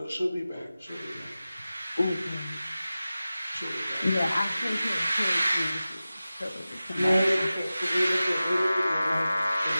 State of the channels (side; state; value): both; inverted; correlation -0.96